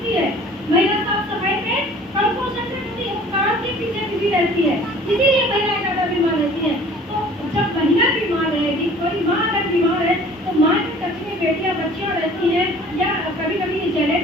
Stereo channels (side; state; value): both; normal; correlation 0.49